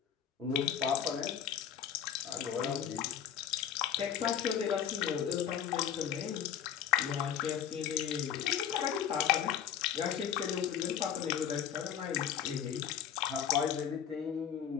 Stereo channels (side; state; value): right; quieter; 9.0 dB